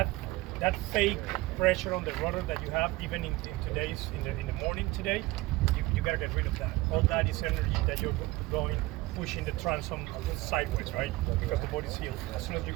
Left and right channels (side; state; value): left; quieter; 20.0 dB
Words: fake pressure on the rudder that you have, even in the morning today, you gotta get rid of that. All that is energy that you're going pushing the transom sideways, right? Because the boat is heeled. As soon as you